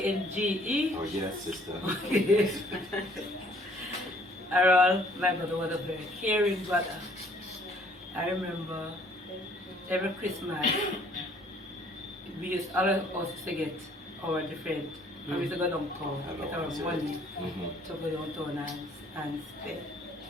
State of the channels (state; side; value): normal; both; correlation 0.59